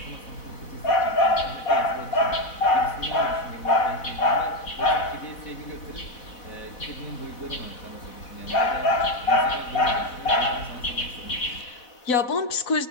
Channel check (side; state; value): right; late; 4.0 ms